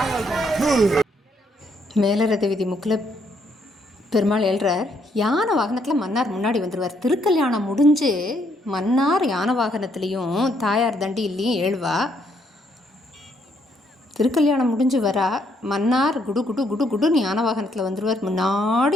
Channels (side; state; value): both; normal; correlation 0.72